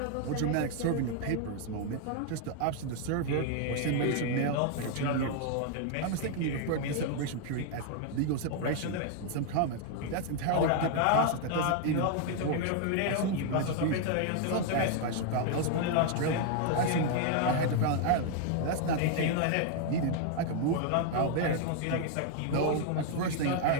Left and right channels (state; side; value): different; both; correlation 0.00